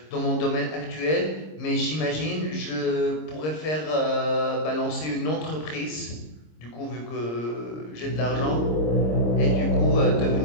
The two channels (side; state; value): right; late; 26 ms